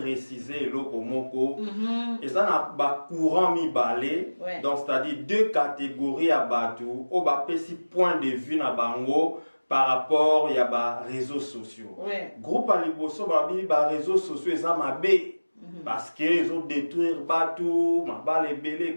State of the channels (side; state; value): both; inverted; correlation -1.00